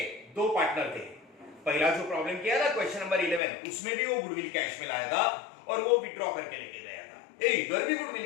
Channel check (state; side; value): drops out; right; at 3.4 s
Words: दो पार्टनर थे. पहला जो प्रॉब्लम किया था क्वेश्चन नंबर 11, उसमें भी वो गुडविल कैश में लाया था और वो विड्रॉ करके लेके गया था. इधर भी